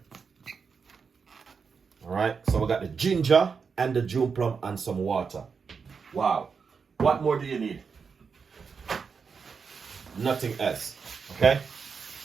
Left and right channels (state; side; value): quieter; left; 5.6 dB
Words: All right, so we got the ginger and the June plum and some water. Wow. What more do you need? Nothing else. Okay?